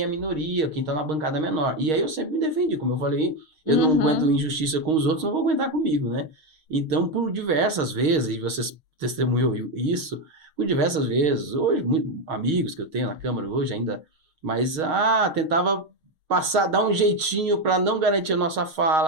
é minoria, quem está na bancada menor. E aí eu sempre me defendi, como eu falei, eu não aguento injustiça com os outros, não vou aguentar comigo, né? Então, por diversas vezes, e vocês testemunhou isso, por diversas vezes, hoje, amigos que eu tenho na Câmara hoje ainda, mas tentava passar, dar um jeitinho para não garantir a nossa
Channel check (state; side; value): late; left; 6.4 ms